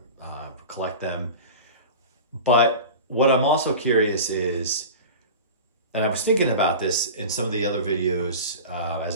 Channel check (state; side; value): inverted; both; correlation -0.33